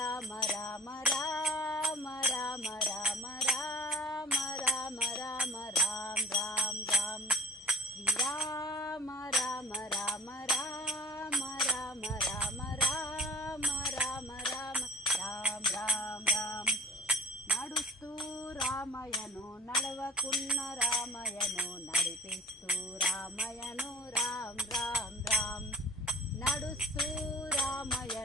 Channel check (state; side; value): normal; both; correlation 0.44